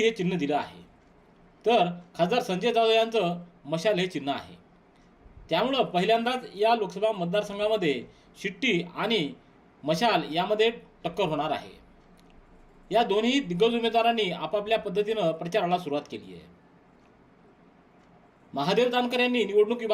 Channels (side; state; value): both; identical; correlation 1.00